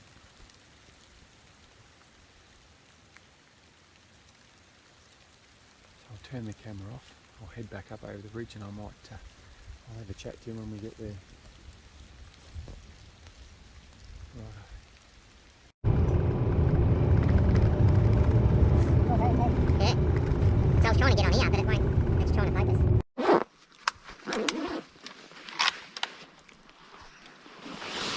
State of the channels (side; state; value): both; identical; correlation 1.00